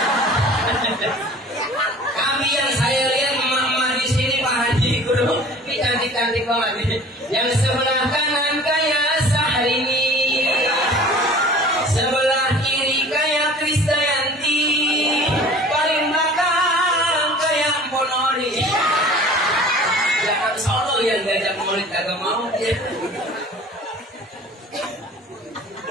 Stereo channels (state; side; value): normal; both; correlation 0.45